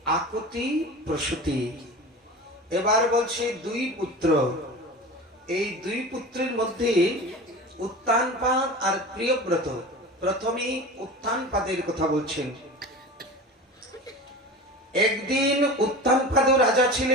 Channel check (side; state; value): both; normal; correlation 0.33